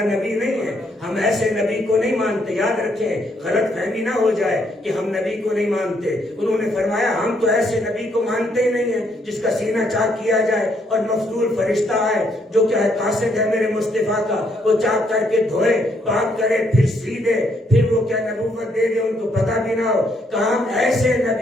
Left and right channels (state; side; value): normal; both; correlation 0.72